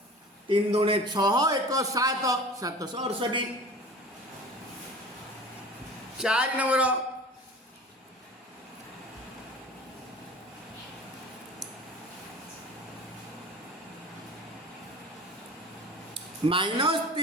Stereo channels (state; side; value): normal; both; correlation 0.39